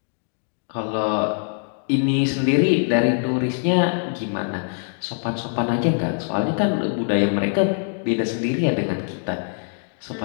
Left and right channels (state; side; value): silent; right; 63 dB below the other